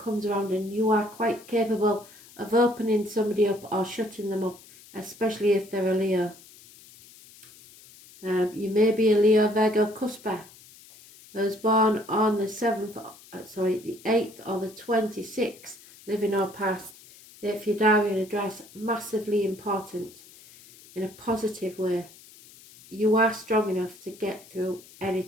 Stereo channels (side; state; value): left; noise; hiss, 22 dB below the sound